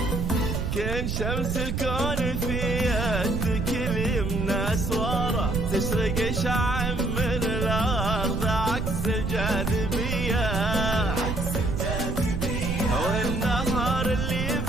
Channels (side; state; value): right; noise; rumble, 2 dB below the sound